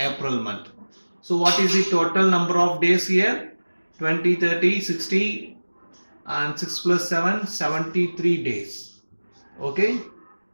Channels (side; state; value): both; inverted; correlation -1.00